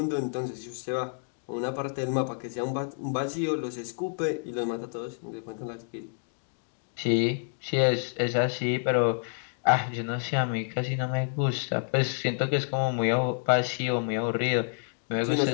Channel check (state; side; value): silent; right; digital silence